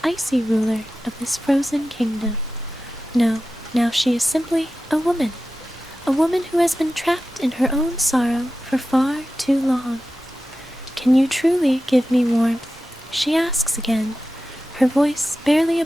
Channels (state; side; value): normal; both; correlation 0.94